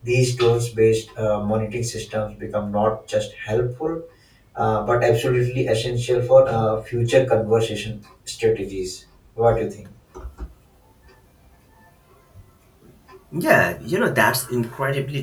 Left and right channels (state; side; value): identical; both; correlation 1.00